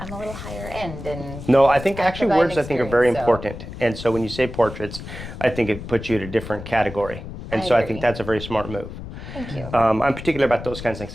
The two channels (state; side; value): noise; left; rumble, 11 dB below the sound